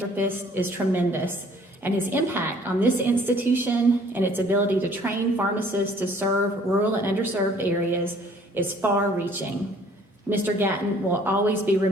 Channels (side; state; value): both; normal; correlation 0.57